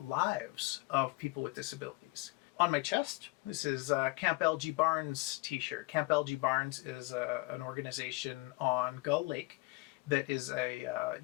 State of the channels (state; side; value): quieter; right; 24.5 dB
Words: of people with disabilities. On my chest, this is Camp LG Barnes t-shirt. Camp LG Barnes is an organization on Gull Lake that is a